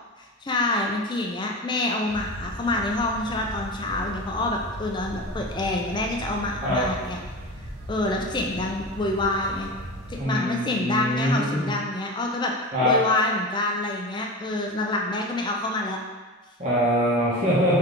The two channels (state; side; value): normal; both; correlation 0.28